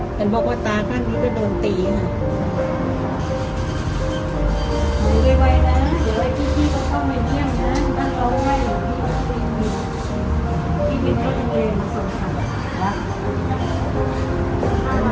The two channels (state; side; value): identical; both; correlation 1.00